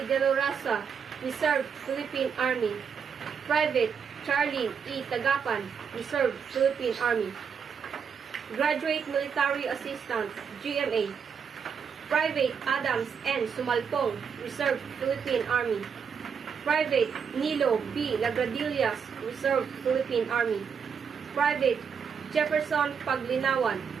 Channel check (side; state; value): left; quieter; 6.7 dB